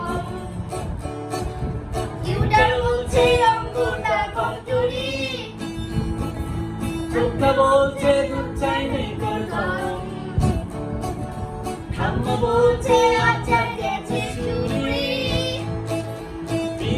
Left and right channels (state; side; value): identical; both; correlation 1.00